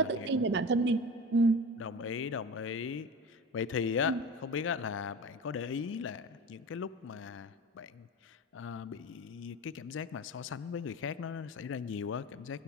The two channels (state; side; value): normal; both; correlation 0.31